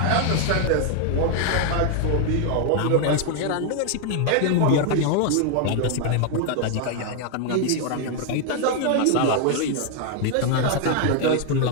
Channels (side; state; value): both; different; correlation 0.00